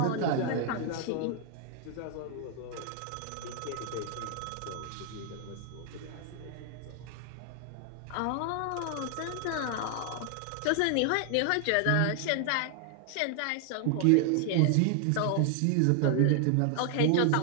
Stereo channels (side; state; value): both; different; correlation 0.00